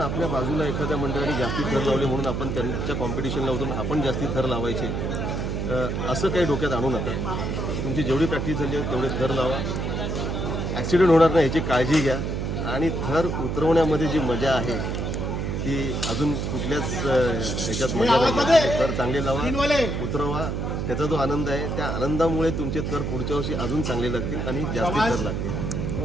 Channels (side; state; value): right; noise; hum, 2 dB below the sound